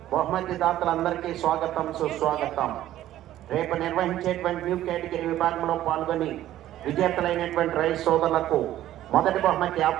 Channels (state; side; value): quieter; left; 13.3 dB